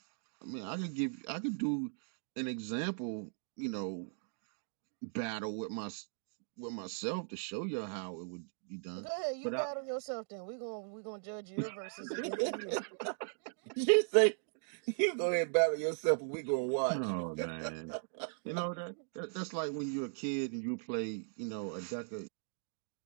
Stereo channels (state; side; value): silent; left; digital silence